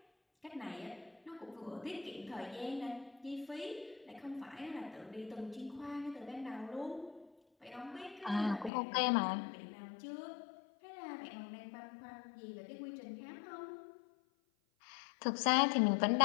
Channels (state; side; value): drops out; right; at 8.7 s